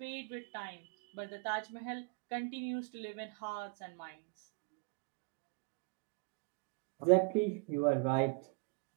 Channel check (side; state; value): left; quieter; 31.3 dB